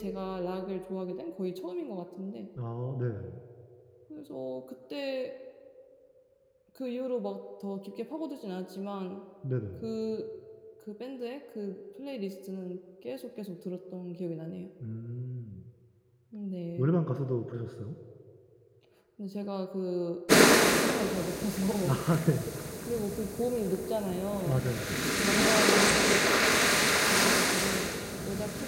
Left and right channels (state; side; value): identical; both; correlation 1.00